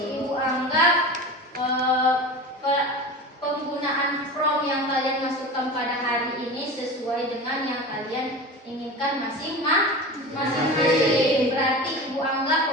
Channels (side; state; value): both; normal; correlation 0.31